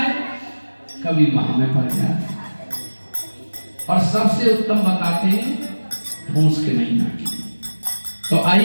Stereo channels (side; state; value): both; inverted; correlation -1.00